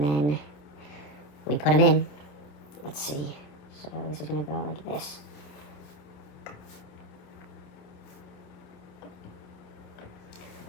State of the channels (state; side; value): late; right; 27 ms